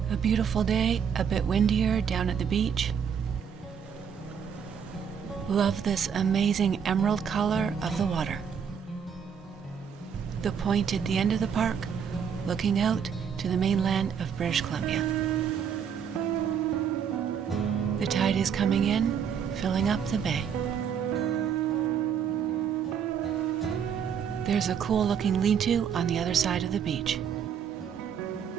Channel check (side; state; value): left; quieter; 7.5 dB